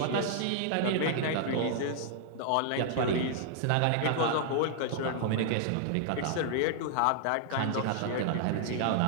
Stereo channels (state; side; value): different; both; correlation -0.01